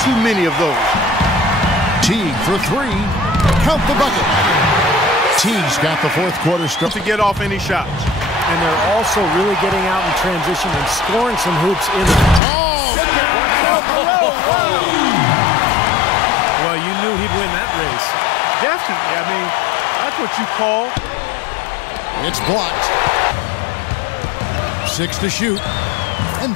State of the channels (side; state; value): right; drops out; at 12.4 s